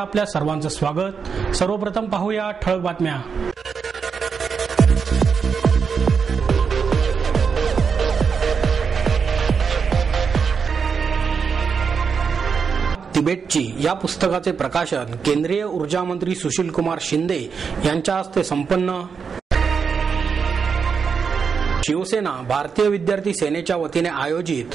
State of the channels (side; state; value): left; quieter; 5.9 dB